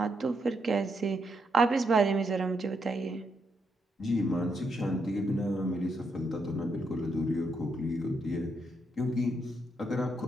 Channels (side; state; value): both; normal; correlation 0.79